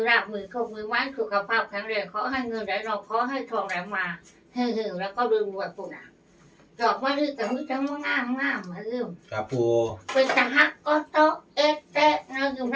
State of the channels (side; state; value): both; identical; correlation 1.00